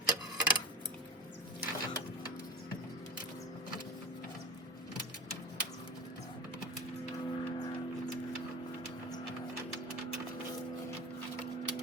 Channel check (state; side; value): normal; both; correlation 0.32